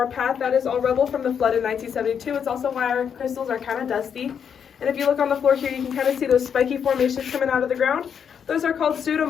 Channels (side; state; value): right; quieter; 7.5 dB